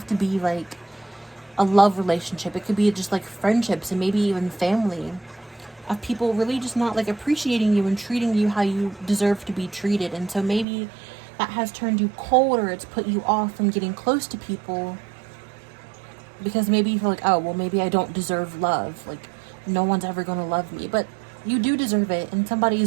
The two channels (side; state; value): left; drops out; at 10.7 s